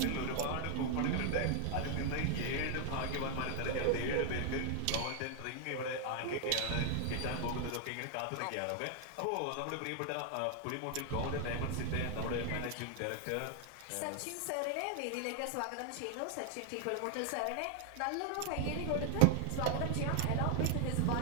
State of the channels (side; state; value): both; different; correlation 0.00